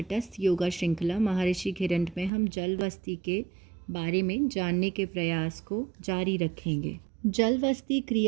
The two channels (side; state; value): left; drops out; at 2.3 s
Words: योगा श्रृंखला महर्षि घिरंड में हम जल वस्ती के बारे में जानने के प्रयास को जारी रखेंगे। जल वस्ती